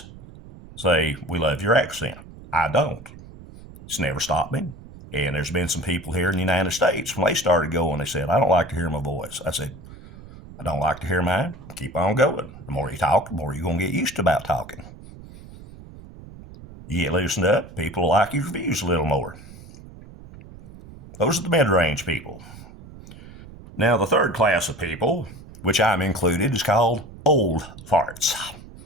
say, we love your accent. I don't. It's never stopped me. And there's been some people here in the United States, when they started going, they said, I don't like to hear my voice. I said, I don't like to hear mine. Keep on going. The more you talk, the more you're going to get used to about talking. You get loosened up, people like your reviews a little more. Those are the mid-range people. Now, the third class of people, which I'm included, is called old farts.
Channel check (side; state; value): right; noise; rumble, 17 dB below the sound